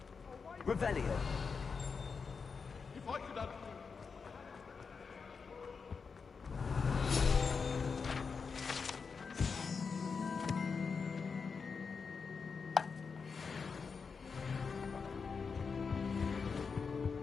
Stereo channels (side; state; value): right; quieter; 5.3 dB